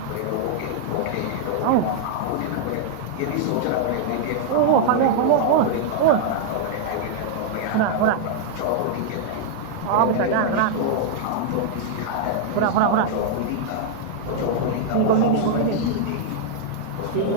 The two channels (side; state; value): both; different; correlation -0.01